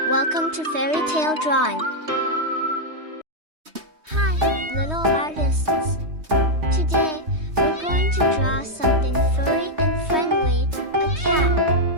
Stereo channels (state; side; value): late; left; 3.2 ms